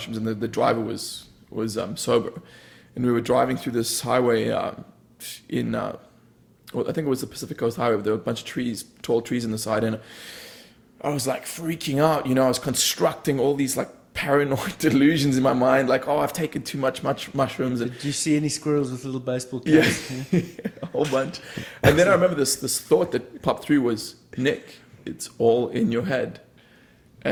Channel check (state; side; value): identical; both; correlation 1.00